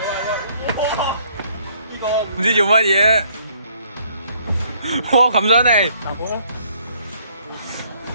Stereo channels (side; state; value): both; inverted; correlation -0.64